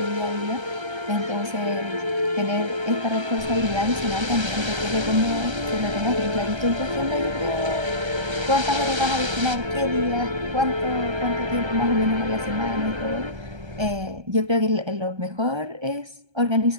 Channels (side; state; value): left; late; 1.3 ms